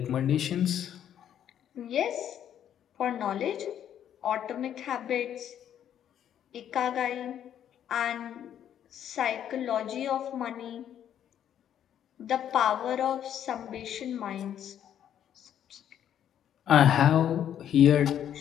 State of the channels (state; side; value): quieter; right; 10.0 dB